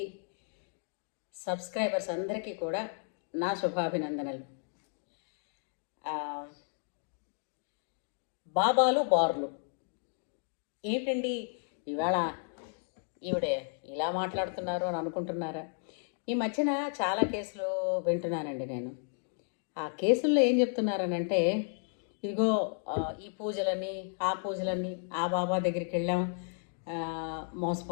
సబ్స్క్రైబర్స్ అందరికీ కూడా నా శుభాభినందనలు. బాబాలు బార్లు ఏంటండి ఇవాళ ఈవిడే ఇలా మాట్లాడుతున్నారు అని అనుకుంటున్నారా? ఈ మధ్యన చాలా కేసులు వింటున్నానండి నేను. ఆ కేసుల్లో ఏం చెప్తున్నారనంటే, ఇదిగో ఈ పూజలని ఆ పూజలని ఆ బాబా దగ్గరికి వెళ్ళాం,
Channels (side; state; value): right; silent; 56 dB below the other